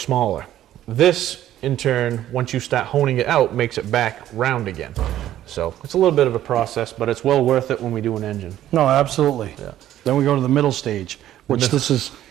This, in turn, once you start honing it out, makes it back round again. So it's a little bit of a process, but it's well worth it when we do an engine. No, absolutely. Yeah. Then we go to the middle stage, which this is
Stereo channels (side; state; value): left; quieter; 12.6 dB